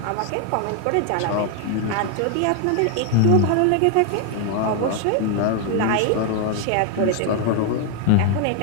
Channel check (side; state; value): both; different; correlation 0.00